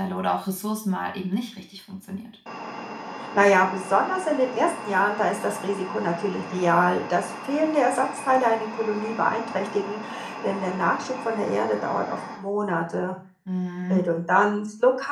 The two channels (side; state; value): both; identical; correlation 1.00